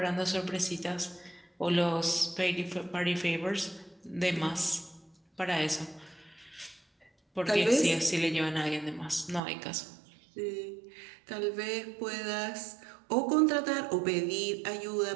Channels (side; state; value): left; drops out; at 9.4 s